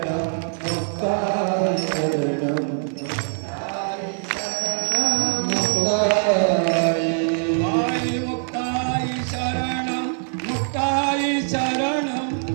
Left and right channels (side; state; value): left; silent; digital silence